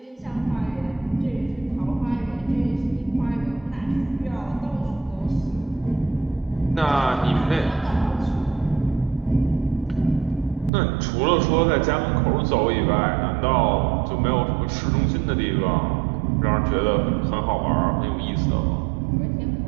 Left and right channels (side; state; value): left; drops out; at 10.7 s